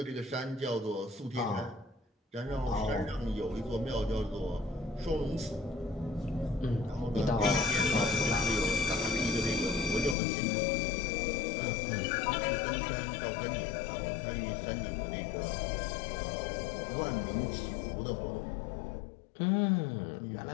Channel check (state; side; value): drops out; right; at 10.2 s